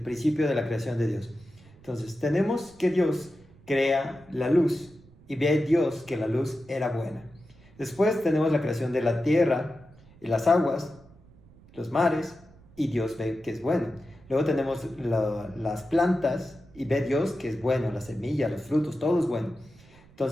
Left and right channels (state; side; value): noise; right; rumble, 25 dB below the sound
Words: de la creación de Dios. Entonces tenemos que Dios crea la luz y ve Dios que la luz era buena. Después tenemos la creación de la tierra y las aguas, los mares, y Dios ve que es bueno. Luego tenemos las plantas y ve Dios que es bueno, la semilla, los frutos, todo es bueno.